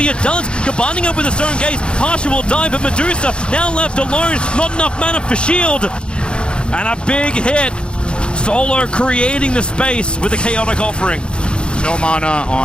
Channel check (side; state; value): right; late; 0.054 ms